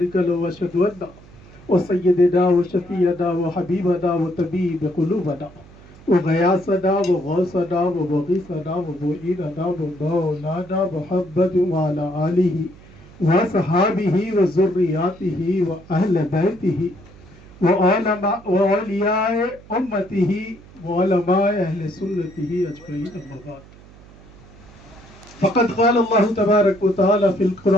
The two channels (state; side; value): noise; right; hum, 22 dB below the sound